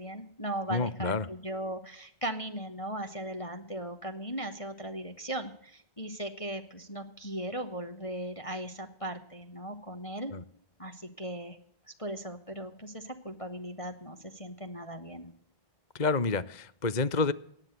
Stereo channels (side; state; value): right; late; 1.6 ms